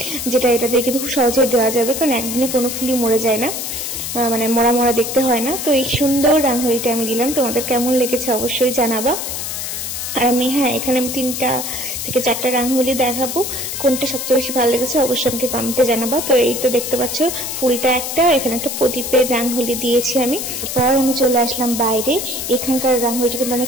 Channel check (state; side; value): noise; left; hiss, 5 dB below the sound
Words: যেটা এটা দিয়ে কিন্তু খুব সহজে দেওয়া যাবে, কারণ একদিনে কোনো ফুলই মরে যায় না, মানে মরা মরা দেখতে হয় না। তো এই সুন্দর রাঙহলিটা আমি দিলাম, তোমাদের কেমন লেগেছে অবশ্যই জানাবা। আর আমি এখানে আমি 3টা থেকে 4টা রাঙহলি দেখাবো, কোনটা সবচেয়ে বেশি ভালো লেগেছে অবশ্যই আমাকে কমেন্টে জানাবা। তো এই তো দেখতে পাচ্ছ ফুলটা একটা, এখানে একটা প্রদীপের রাঙহলি দিয়েছি আমি। তারপর আমি চলে আসলাম বাইরে, এখানকার রাঙহলিটা কিন্তু